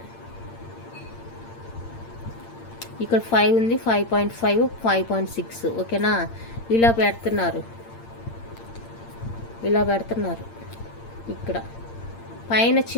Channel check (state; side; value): late; right; 8.7 ms